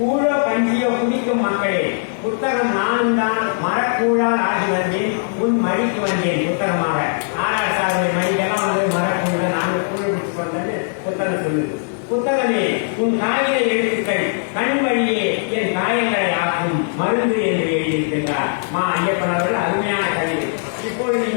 கஞ்சியோ குடிக்கும் மக்களே, புத்தகம் நானும் தான் மரக்கூழால் ஆகி வந்தேன், உன் மடிக்கு வந்தேன் புத்தகமாக. ஆராய்ச்சாளர்கள் மடிக்கெல்லாம் வந்து மரக்கூழ நாங்கள் கூழ் குடிச்சு வந்தது புத்தகம் சொல்லுது. புத்தகமே, உன் காகித எழுத்துக்கள் கண் வழியே என் காயங்களை ஆக்கும் மருந்து என்று எழுதியிருக்கின்றார் மா ஐயப்பன் அவர்கள். அருமையான கவிதை. இப்பொழுது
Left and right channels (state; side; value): silent; right; digital silence